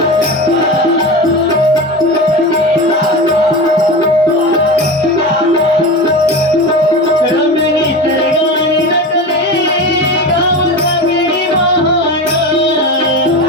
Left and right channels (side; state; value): both; normal; correlation 0.26